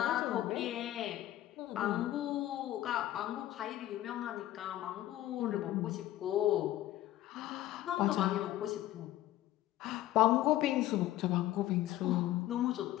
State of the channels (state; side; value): quieter; right; 14.4 dB